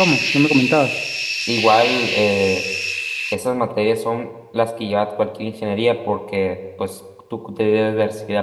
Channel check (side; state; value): both; identical; correlation 1.00